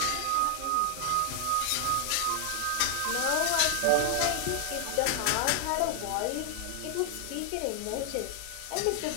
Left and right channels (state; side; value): different; both; correlation 0.00